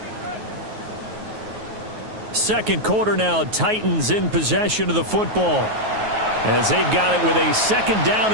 Second quarter now, Titans in possession of the football as they've got it with a 2nd down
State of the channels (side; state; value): left; late; 9.4 ms